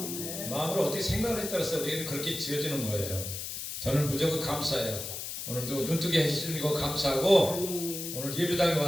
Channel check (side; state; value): left; noise; hiss, 6 dB below the sound